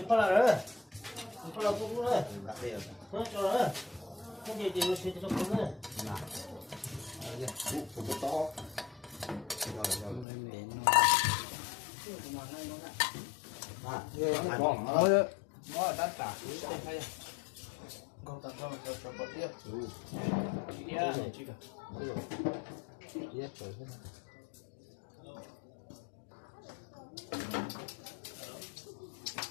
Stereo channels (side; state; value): right; drops out; at 10.2 s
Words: lại rồi chụp lại cũng rồi thôi cho rồi không gì thì nó sẽ cho cũng rồi to rồi nó đắt cả con tao cho bớt tiếp